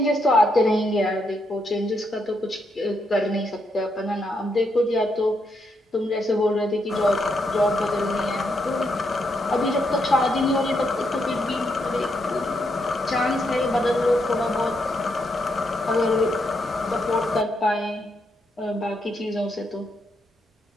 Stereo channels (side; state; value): both; normal; correlation 0.79